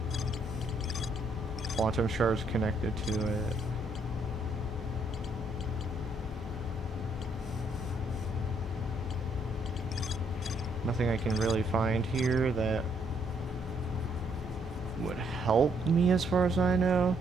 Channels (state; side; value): normal; both; correlation 0.71